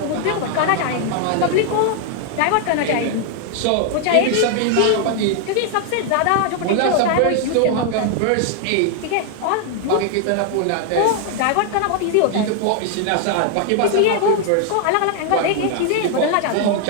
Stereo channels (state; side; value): different; both; correlation 0.00